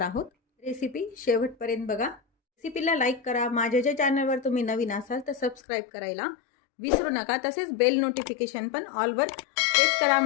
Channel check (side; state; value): right; drops out; at 5.6 s